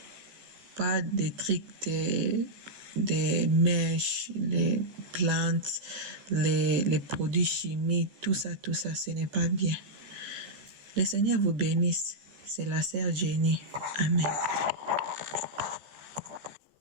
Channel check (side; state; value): left; late; 14 ms